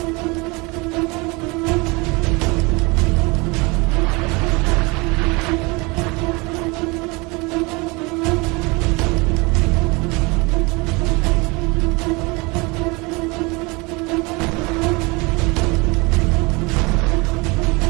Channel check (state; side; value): quieter; left; 26.6 dB